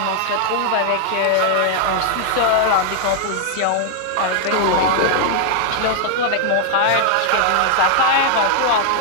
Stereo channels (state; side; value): different; both; correlation 0.00